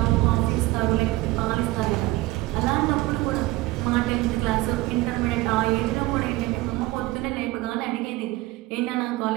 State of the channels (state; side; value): quieter; left; 19.2 dB